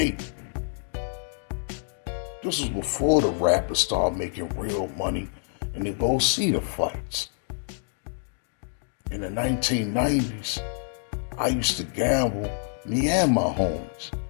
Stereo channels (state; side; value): silent; right; digital silence